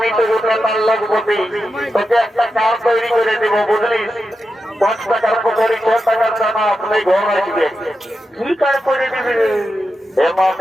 তো ওটা তার লগবতী তোকে একটা কাজ তৈরি করে দেবো বুঝলিস 5 টাকার পকড়ি 6 টাকার দানা আপনি ঘর আসবে কি কাজ করে দিবি হে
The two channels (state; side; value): normal; both; correlation 0.89